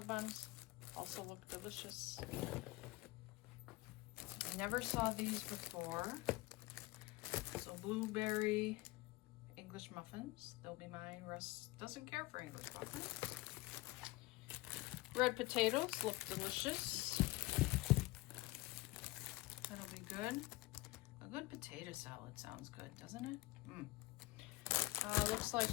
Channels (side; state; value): right; quieter; 20.7 dB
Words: buns also look delicious. I never saw these before. So blueberry English muffins. They'll be mine. Russ doesn't care for English muffins. Red potatoes look delicious. That'll be good. A good potato salad sounds good, doesn't it? Looks